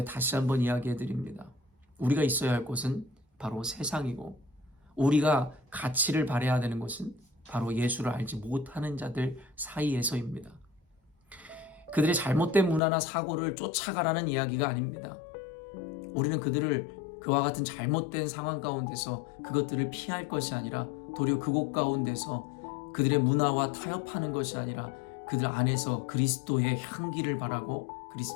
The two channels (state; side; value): drops out; right; at 12.8 s